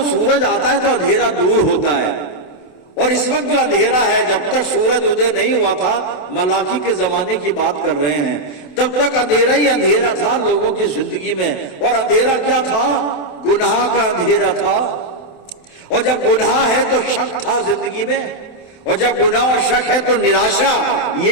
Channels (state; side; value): late; right; 27 ms